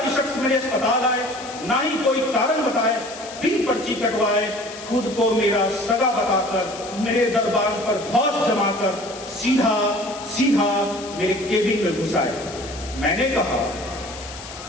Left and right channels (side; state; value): left; noise; hiss, 14 dB below the sound